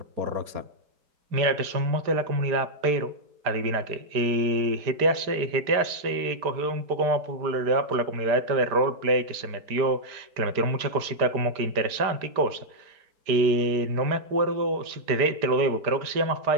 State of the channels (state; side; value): late; left; 5.0 ms